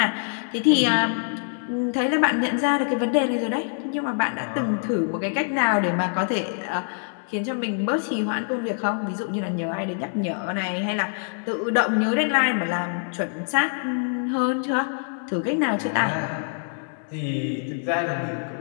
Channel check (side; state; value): right; silent; digital silence